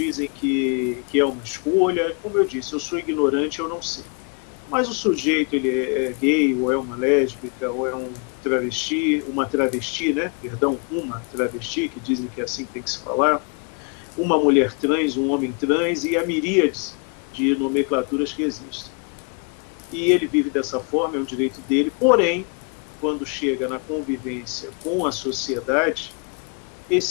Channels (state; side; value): quieter; right; 37.3 dB